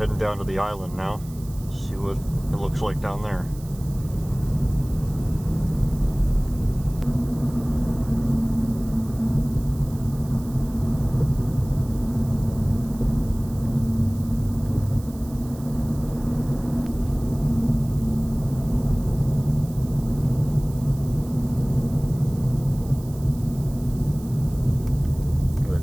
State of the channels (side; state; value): right; noise; hiss, 21 dB below the sound